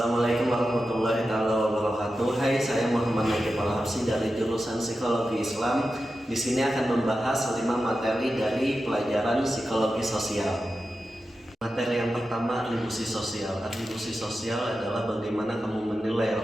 warahmatullahi wabarakatuh. Hai, saya Muhammad Nakib Al-Habsyi dari jurusan Psikologi Islam. Di sini akan membahas 5 materi dari pelajaran psikologi sosial. Materi yang pertama, atribusi sosial. Atribusi sosial adalah bagaimana kamu menilai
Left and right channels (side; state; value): both; normal; correlation 0.91